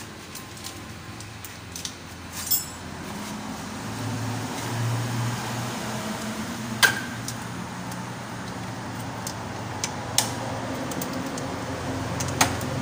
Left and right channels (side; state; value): both; identical; correlation 1.00